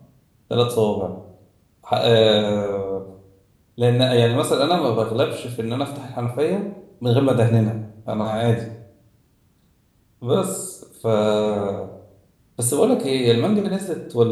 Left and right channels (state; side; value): identical; both; correlation 1.00